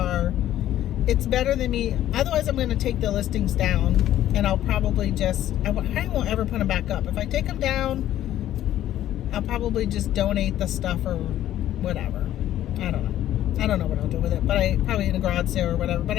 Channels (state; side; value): quieter; right; 12.6 dB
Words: it's better than me. Otherwise, I'm going to take the listings down, and I'll probably just, I won't ever put them back up. If I take them down, I'll probably just donate the stuff or whatever. I don't know. I don't know what I'll do with it, but I probably in a garage sale or whatever. But